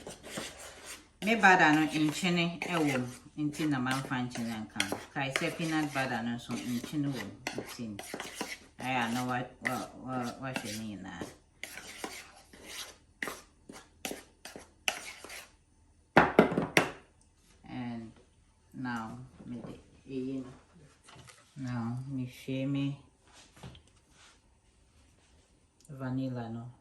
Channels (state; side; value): identical; both; correlation 1.00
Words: Me butter no in chine ewo inti na man fan chine kan. Kai say peanut butter no so in chine wo inti. I know what you mean na. And now me share me vanilla no.